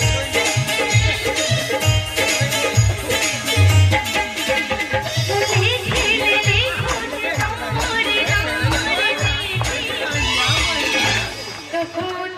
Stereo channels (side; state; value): both; identical; correlation 1.00